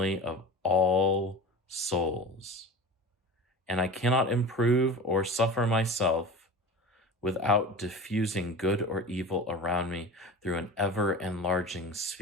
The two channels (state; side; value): normal; both; correlation 0.33